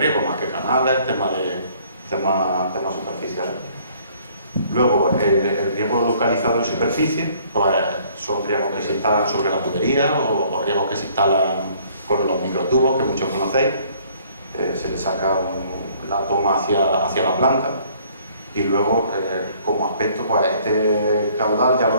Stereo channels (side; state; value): both; inverted; correlation -0.59